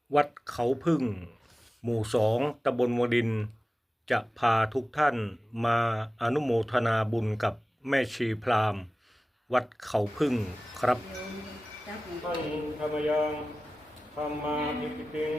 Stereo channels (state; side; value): normal; both; correlation 0.96